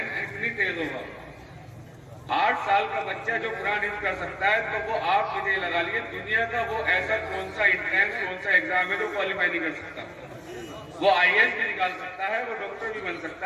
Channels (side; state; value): both; identical; correlation 1.00